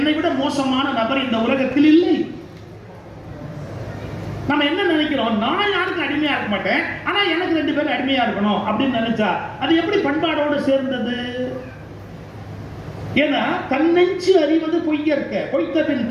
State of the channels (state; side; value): identical; both; correlation 1.00